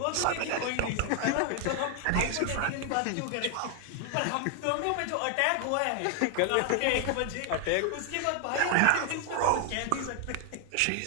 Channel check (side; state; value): both; different; correlation 0.00